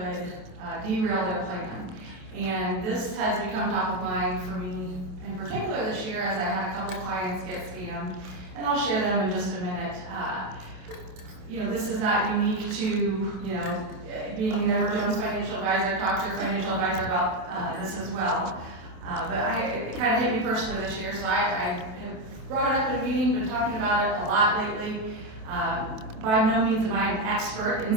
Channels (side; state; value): left; late; 27 ms